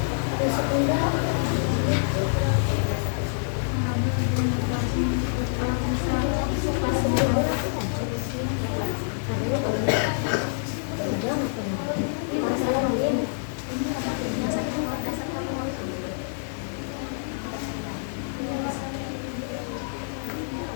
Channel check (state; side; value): silent; right; 61 dB below the other